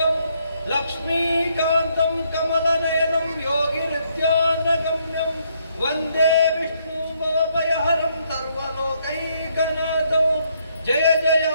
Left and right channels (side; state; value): both; inverted; correlation -0.72